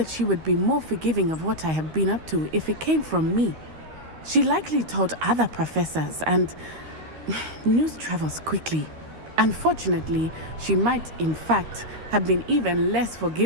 she would be more forgiving of what I have been up to if it came from me. She likely told other professors, and news travels quickly. Unfortunately, she might, in fact, have been even less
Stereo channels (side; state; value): left; late; 13 ms